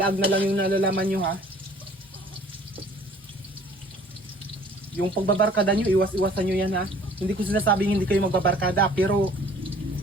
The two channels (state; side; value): normal; both; correlation 0.53